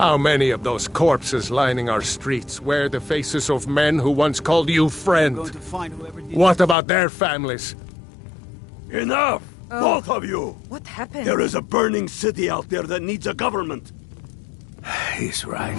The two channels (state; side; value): drops out; right; at 6.8 s